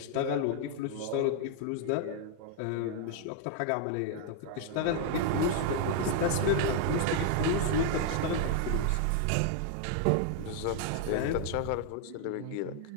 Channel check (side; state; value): both; different; correlation 0.00